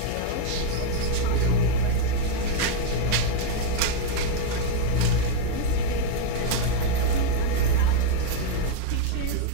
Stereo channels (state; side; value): different; both; correlation 0.00